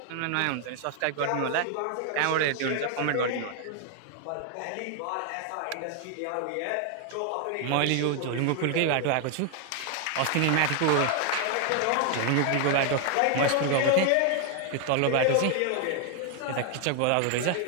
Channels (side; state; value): both; different; correlation 0.00